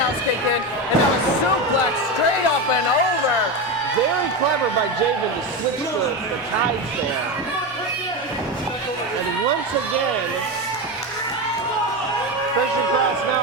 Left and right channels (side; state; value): both; normal; correlation 0.17